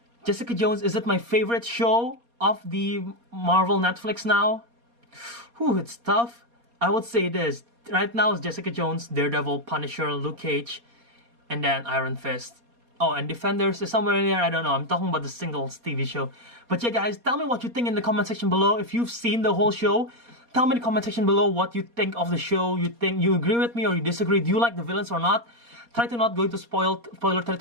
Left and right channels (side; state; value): left; late; 4.2 ms